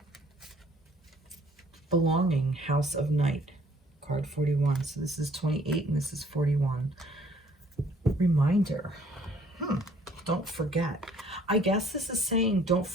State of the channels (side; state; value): both; normal; correlation 0.60